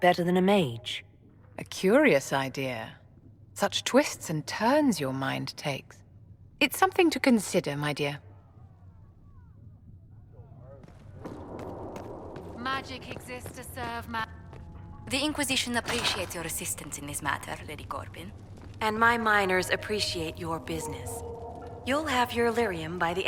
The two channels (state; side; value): identical; both; correlation 1.00